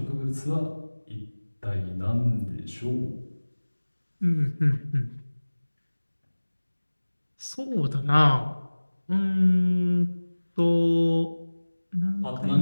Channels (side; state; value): both; inverted; correlation -1.00